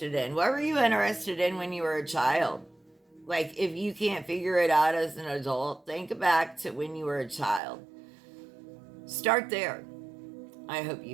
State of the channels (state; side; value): drops out; left; at 7.6 s